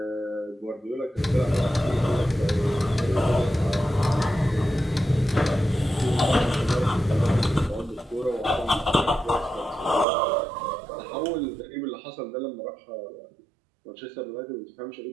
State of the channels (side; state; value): left; drops out; at 10.1 s